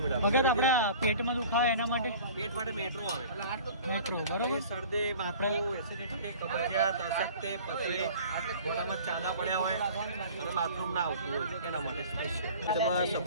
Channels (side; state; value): both; inverted; correlation -0.44